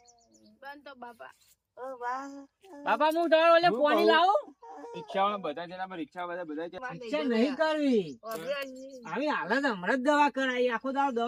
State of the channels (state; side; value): identical; both; correlation 1.00